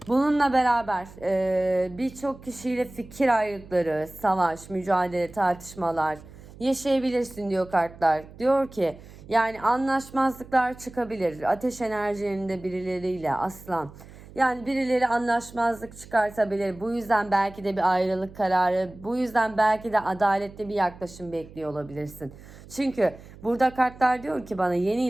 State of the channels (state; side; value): noise; right; hum, 19 dB below the sound